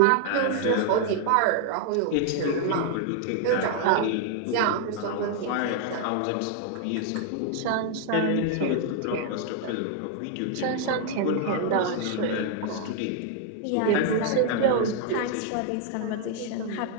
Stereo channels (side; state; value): both; different; correlation 0.00